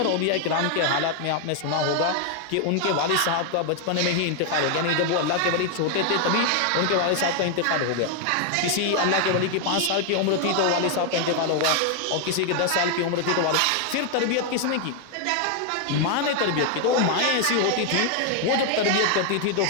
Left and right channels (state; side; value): different; both; correlation 0.00